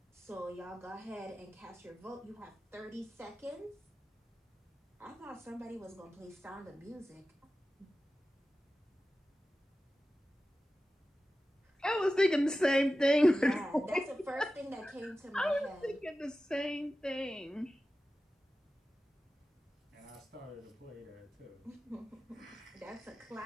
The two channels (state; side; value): normal; both; correlation 0.94